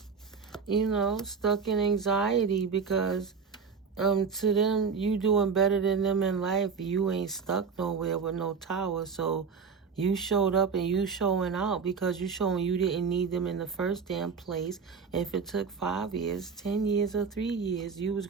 You know, stuck in anxiety because to them, you doing better than them in life. You ain't stuck nowhere with no tower. So you showed up and you showing out because you showing you didn't need them in the first damn place. If it took 5 years, 10 years, or 3 years, you was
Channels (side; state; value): left; quieter; 5.7 dB